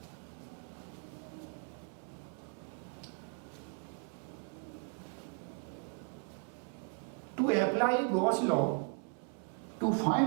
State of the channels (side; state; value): left; quieter; 35.3 dB